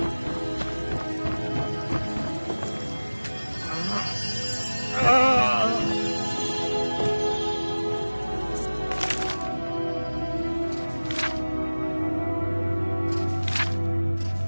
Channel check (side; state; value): both; inverted; correlation -1.00